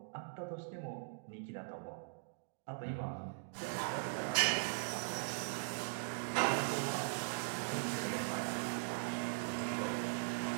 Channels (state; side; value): silent; left; digital silence